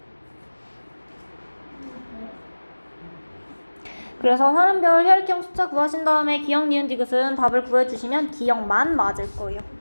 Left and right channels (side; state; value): both; inverted; correlation -1.00